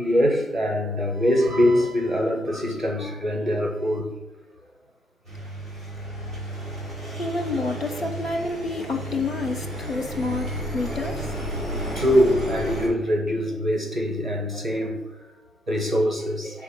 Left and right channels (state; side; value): normal; both; correlation 0.76